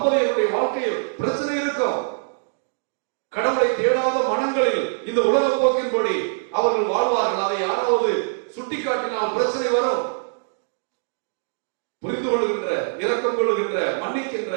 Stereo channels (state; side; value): silent; left; digital silence